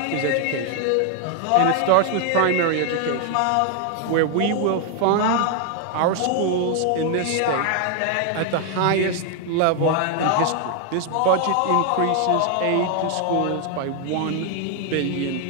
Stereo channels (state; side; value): different; both; correlation 0.00